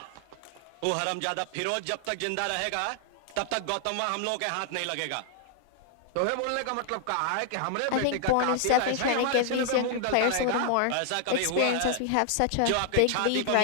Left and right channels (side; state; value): both; different; correlation 0.00